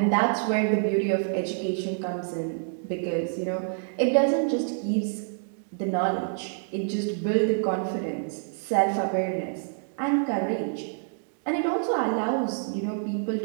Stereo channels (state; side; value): silent; left; digital silence